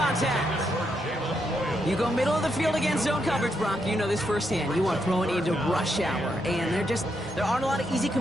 You go middle of the field against zone coverage, Brock. You know this firsthand. You want to throw it into rush hour. And there aren't a lot of easy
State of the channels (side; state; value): both; normal; correlation 0.80